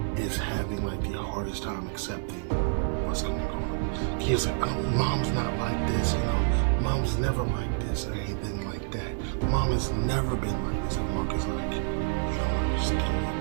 is having like the hardest time accepting what's going on. He's like, oh, Mom's not like this, you know. Mom's never like this or anything like that. Mom has never been like this. And Mark is like, you don't understand.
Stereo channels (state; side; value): silent; left; digital silence